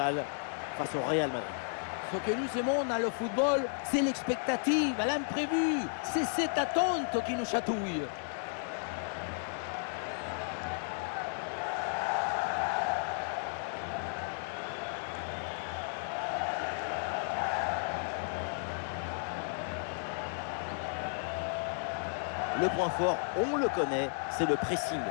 face au Real Madrid. Ce que nous aimons dans le football, c'est l'expectative, l'imprévu. C'est cette attente qui nous chatouille. Le point fort, on le connaît, c'est le pressing.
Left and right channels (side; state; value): right; silent; digital silence